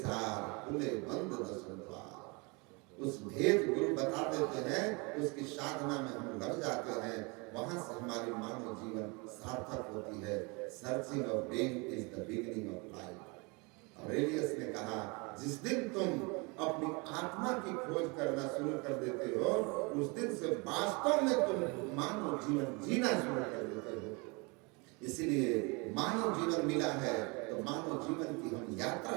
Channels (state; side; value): quieter; left; 29.2 dB